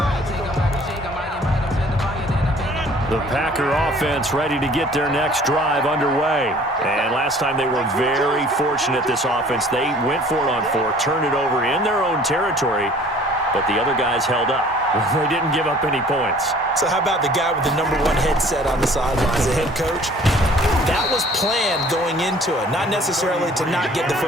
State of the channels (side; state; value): both; normal; correlation 0.52